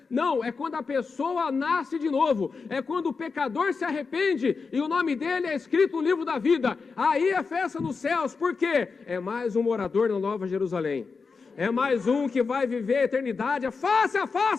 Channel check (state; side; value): quieter; right; 4.8 dB